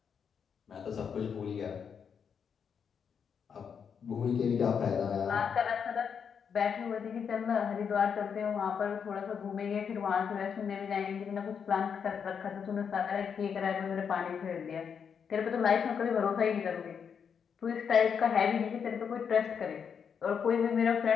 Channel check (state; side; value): quieter; right; 7.0 dB